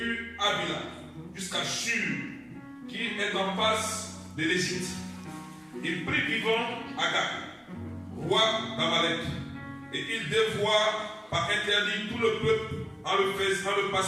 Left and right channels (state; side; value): identical; both; correlation 1.00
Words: Abila jusqu'à Shur, qui est en face de l'Égypte. Il prit vivant Agag, roi d'Amalek, et il dévoua par interdit tout le peuple en le